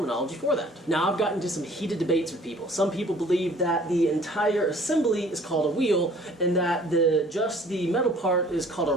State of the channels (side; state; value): both; normal; correlation 0.53